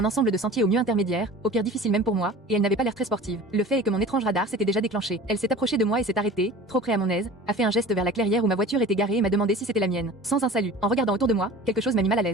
ensemble de sentiers au mieux intermédiaire, au pire difficile même pour moi, et elle n'avait pas l'air très sportive. Le fait est que mon étrange radar s'était déjà déclenché. Elle s'est approchée de moi et s'est arrêtée, trop près à mon aise, a fait un geste vers la clairière où ma voiture était garée et m'a demandé si c'était la mienne. Sans un salut. En regardant autour de moi, quelque chose m'a mis mal à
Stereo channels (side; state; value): both; normal; correlation 0.40